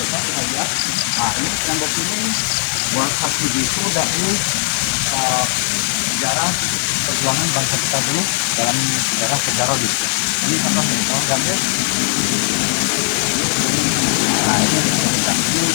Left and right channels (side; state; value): right; silent; digital silence